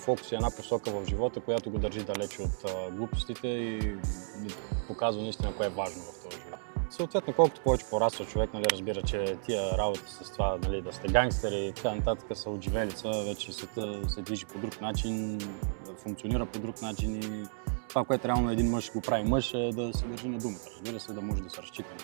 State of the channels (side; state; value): left; silent; 56 dB below the other